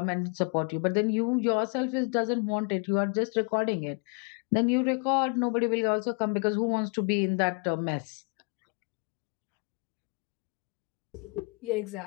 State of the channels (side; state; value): right; quieter; 34.2 dB